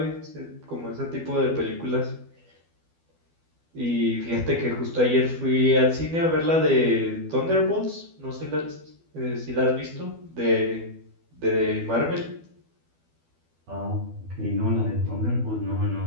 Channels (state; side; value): late; left; 12 ms